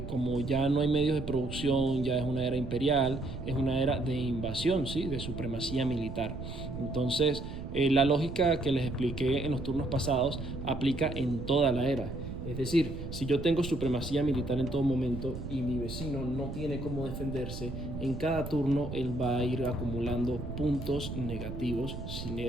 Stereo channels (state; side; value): noise; right; rumble, 8 dB below the sound